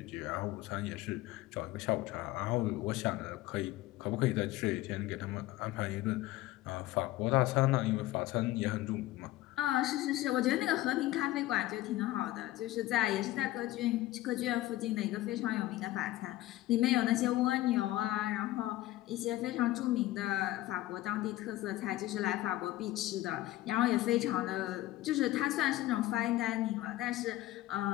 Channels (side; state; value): right; quieter; 16.4 dB